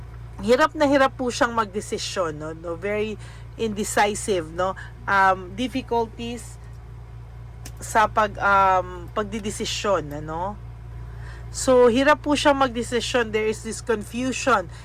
Hirap na hirap po siyang magdesisyon, no? Very indecisive, no? Difficulties sa pagdidesisyon, ano? So, hirap po siyang magdesisyon. There is this confusion,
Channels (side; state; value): both; identical; correlation 1.00